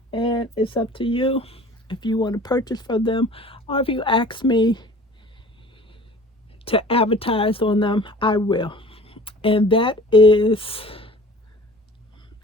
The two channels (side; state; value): both; normal; correlation 0.45